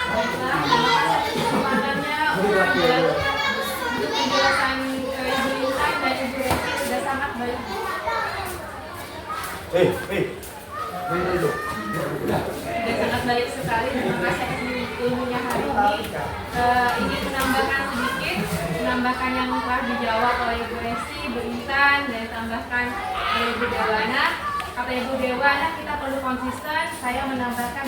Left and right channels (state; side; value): identical; both; correlation 1.00